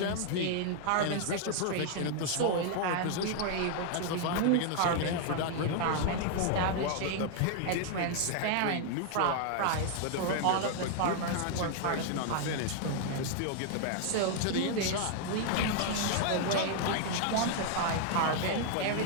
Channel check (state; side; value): different; both; correlation 0.00